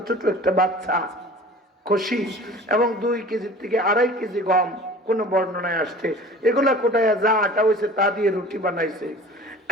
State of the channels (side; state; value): both; normal; correlation 0.43